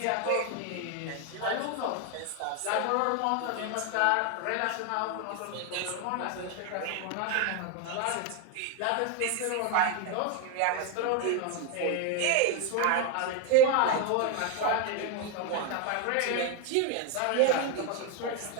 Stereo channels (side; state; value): both; different; correlation 0.01